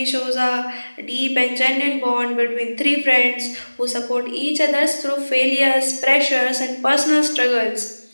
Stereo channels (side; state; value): both; inverted; correlation -1.00